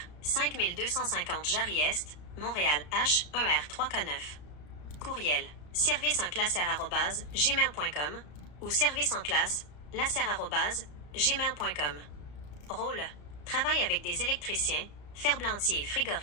5250 Jarry-Est, Montréal H1R3K9. Courriel. serviceenclasser@gmail.com ou serviceenclasse@gmail.com. Rôle. Travaille avec des électriciens, ferblantiers et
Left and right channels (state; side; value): late; right; 34 ms